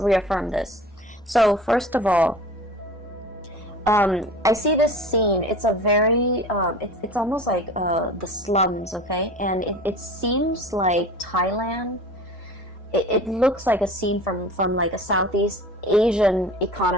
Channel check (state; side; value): normal; both; correlation 0.39